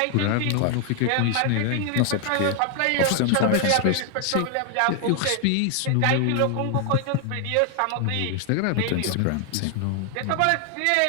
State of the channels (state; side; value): different; both; correlation 0.00